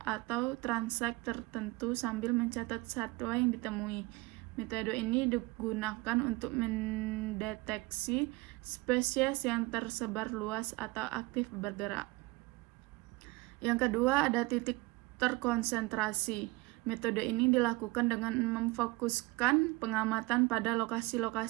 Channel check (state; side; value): quieter; left; 23.0 dB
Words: transek tertentu sambil mencatat satwa yang ditemui. Metode ini digunakan untuk mendeteksi spesies yang tersebar luas atau aktif bergerak. Yang kedua ada titik terkonsentrasi. Metode ini dilakukan dengan memfokuskan pengamatan pada